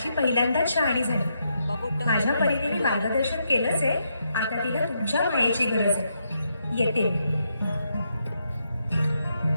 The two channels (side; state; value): both; inverted; correlation -0.80